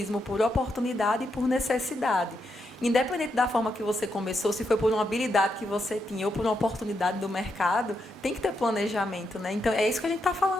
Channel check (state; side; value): normal; both; correlation 0.82